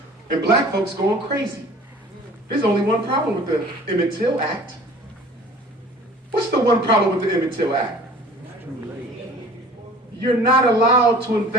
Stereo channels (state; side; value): normal; both; correlation 0.47